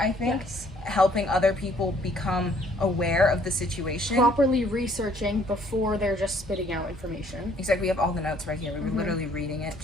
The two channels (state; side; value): normal; both; correlation 0.61